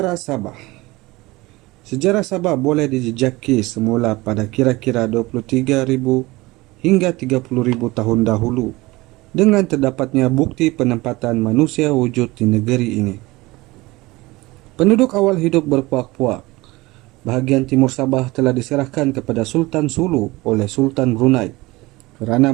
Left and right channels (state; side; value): quieter; left; 21.1 dB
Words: Sabah. Sejarah Sabah boleh dijejaki semula pada kira-kira 23,000 hingga 30,000 tahun dahulu dengan terdapatnya bukti penempatan manusia wujud di negeri ini. Penduduk awal hidup berpuak-puak. Bahagian timur Sabah telah diserahkan kepada Sultan Sulu oleh Sultan Brunei kerana